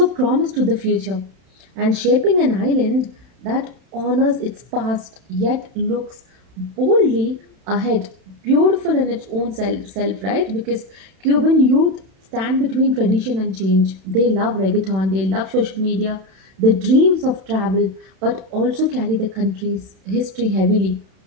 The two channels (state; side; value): late; left; 31 ms